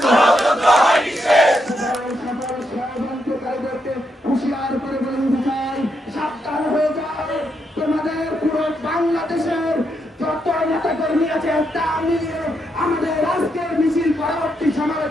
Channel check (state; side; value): normal; both; correlation 0.80